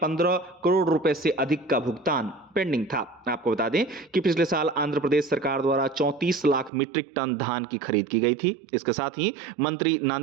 करोड़ रुपए से अधिक का भुगतान पेंडिंग था। आपको बता दें कि पिछले साल आंध्र प्रदेश सरकार द्वारा 34 लाख मीट्रिक टन धान की खरीद की गई थी। इसके साथ ही मंत्री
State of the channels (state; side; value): drops out; left; at 6.7 s